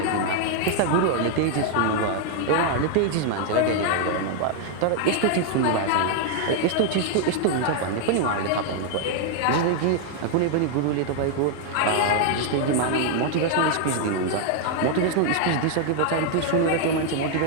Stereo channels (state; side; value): different; both; correlation 0.00